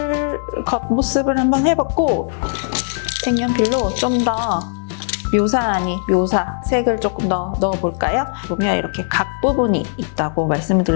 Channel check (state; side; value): silent; right; digital silence